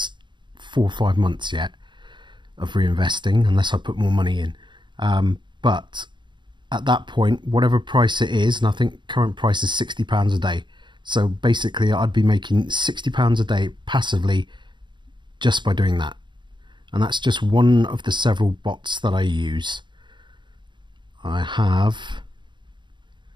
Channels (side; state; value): left; late; 0.23 ms